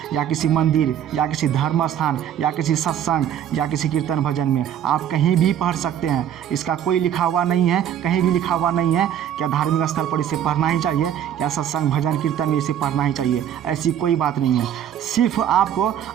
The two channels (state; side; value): quieter; left; 10.0 dB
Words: या किसी मंदिर या किसी धर्म स्थान या किसी सत्संग या किसी कीर्तन भजन में आप कहीं भी पढ़ सकते हैं। इसका कोई लिखा हुआ नहीं है, कहीं भी लिखा हुआ नहीं है क्या धार्मिक स्थल पर इसे पढ़ना ही चाहिए या सत्संग भजन कीर्तन में इसे पढ़ना ही चाहिए। ऐसी कोई बात नहीं है। सिर्फ आपको